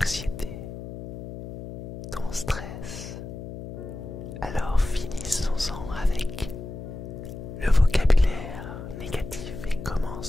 ton stress. Alors finissons-en avec le vocabulaire négatif et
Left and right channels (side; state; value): left; noise; hum, 10 dB below the sound